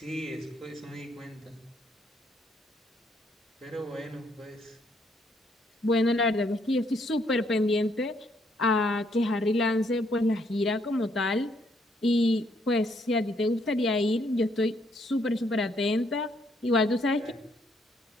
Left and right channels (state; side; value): normal; both; correlation 0.71